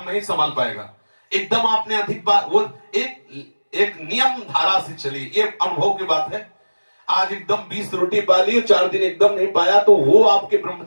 नहीं संभाल पाएगा। एकदम आपने अधिक बार वो एक नियम धारा से चली, ये अनुभव की बात है। आज एकदम 20 रोटी पा ली, 4 दिन एकदम नहीं पाया तो वो आपके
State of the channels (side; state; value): both; inverted; correlation -1.00